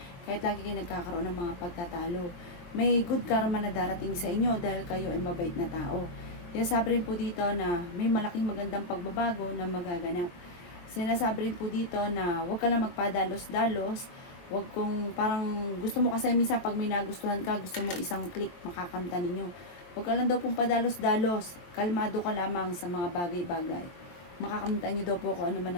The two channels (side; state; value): right; late; 22 ms